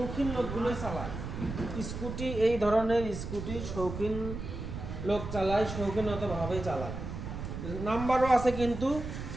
লোকগুলোই চালায়, স্কুটি, এই ধরনের স্কুটি শৌখিন লোক চালায়, শৌখিনতভাবেই চালায়। নাম্বারও আছে কিন্তু,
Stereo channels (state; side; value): noise; right; rumble, 7 dB below the sound